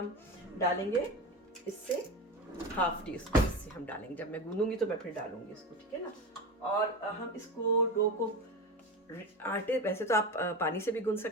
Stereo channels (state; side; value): normal; both; correlation 0.23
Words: डालेंगे, इससे हाफ टी स्पून इससे हम डालेंगे। जब मैं गूंदूंगी तो मैं फिर डालूंगी इसको, ठीक है ना। और हम इसको डो को आटे, वैसे तो आप पानी से भी गूंद